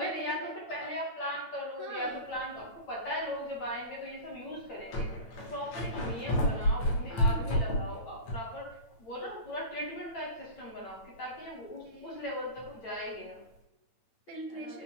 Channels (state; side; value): late; right; 8.9 ms